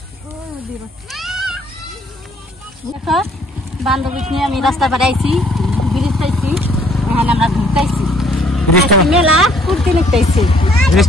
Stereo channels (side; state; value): both; normal; correlation 0.62